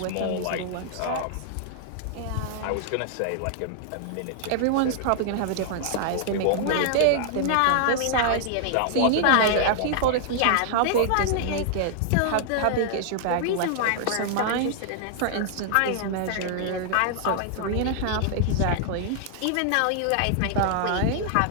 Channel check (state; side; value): different; both; correlation -0.01